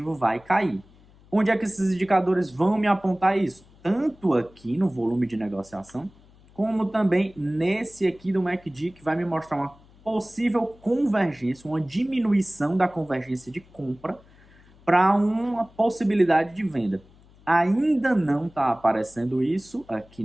vai cair. Onde é que esses indicadores vão me apontar isso? Tanto aqui no volume de negociação, como também nesse aqui do MACD, que vai me mostrar uma possível convergência, uma diminuição da convergência de compra para uma possibilidade de venda. Ainda não está aparecendo isso aqui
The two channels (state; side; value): noise; left; hum, 27 dB below the sound